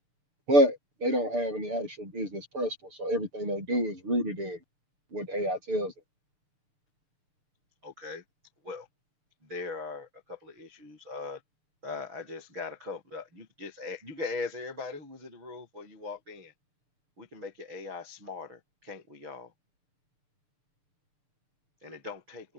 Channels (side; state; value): left; late; 6.8 ms